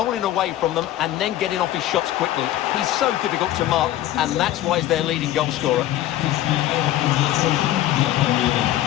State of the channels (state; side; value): quieter; right; 13.5 dB